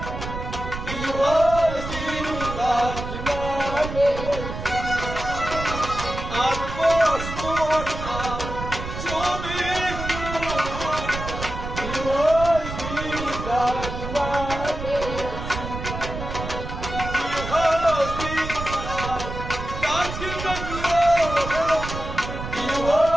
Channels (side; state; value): right; noise; rumble, 7 dB below the sound